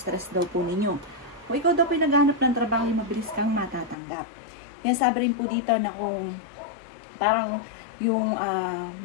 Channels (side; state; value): right; drops out; at 4.0 s